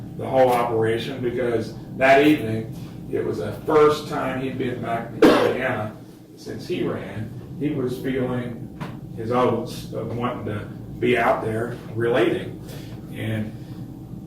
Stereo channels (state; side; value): identical; both; correlation 1.00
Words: the whole operation because that evening it was the first time he'd been back to Indiana since he ran. He was feeling his oats of wanting to be out there relating, and